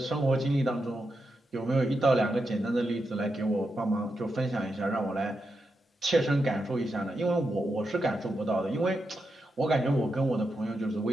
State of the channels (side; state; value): both; normal; correlation 0.86